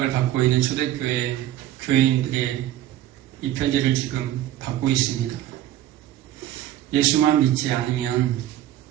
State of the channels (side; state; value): left; quieter; 13.1 dB